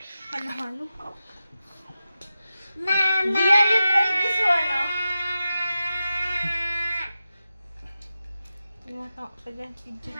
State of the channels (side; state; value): both; inverted; correlation -0.92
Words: Halo-halo. Mama! Dia, you try this one, oh. Tumatawa ka dyan, video.